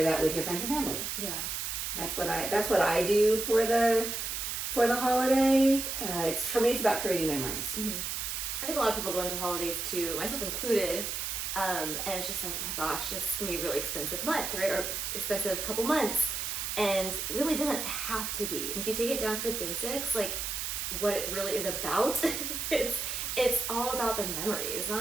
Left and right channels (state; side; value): noise; right; hiss, 3 dB below the sound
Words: that with your friends and family. Yeah. That's what I do for the holiday. For me, it's about creating memories. Mm-hmm. I think a lot of people go into the holidays too, myself included, and it's just like, my gosh, this is gonna be a really expensive month, right? Or expensive couple months, and really doesn't have to be. And if you take it down to the basics, like what it really is about, it's all about the memories. It's